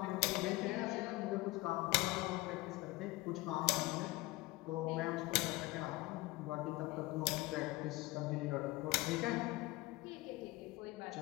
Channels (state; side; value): quieter; right; 20.6 dB